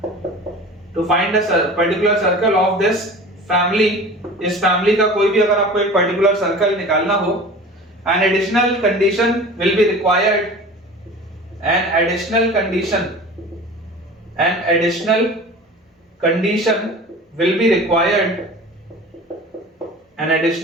of this family, इस फैमिली का कोई भी अगर आपको एक पर्टिकुलर सर्कल निकालना हो, An additional condition will be required. An additional condition will be required. An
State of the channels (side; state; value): both; normal; correlation 0.39